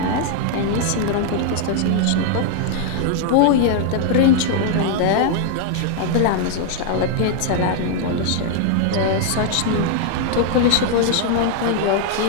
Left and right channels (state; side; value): different; both; correlation 0.00